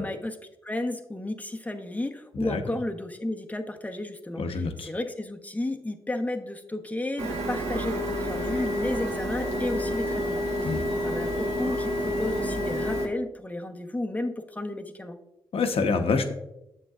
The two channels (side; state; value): both; normal; correlation 0.78